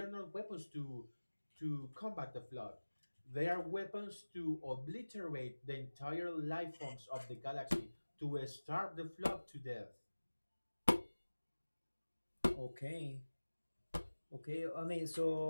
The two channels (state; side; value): inverted; both; correlation -1.00